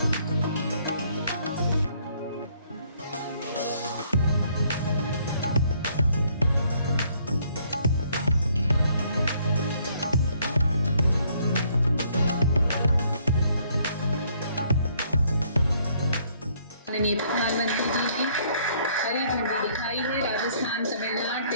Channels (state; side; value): inverted; both; correlation -0.65